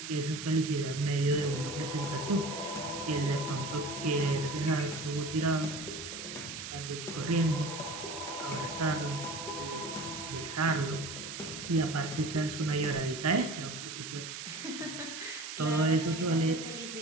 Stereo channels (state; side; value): noise; right; hiss, 8 dB below the sound